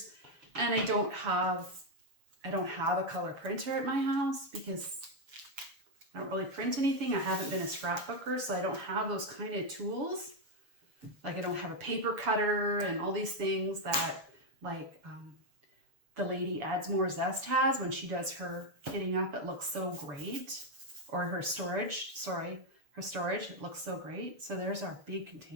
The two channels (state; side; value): late; left; 6.9 ms